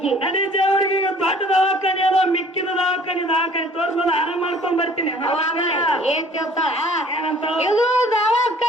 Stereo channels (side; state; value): both; normal; correlation 0.52